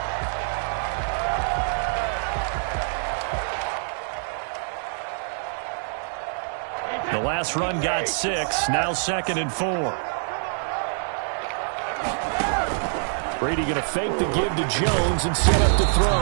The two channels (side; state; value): left; silent; digital silence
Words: The last run got 6, now second and 4. Brady going to fake the give to Jones and set up to throw.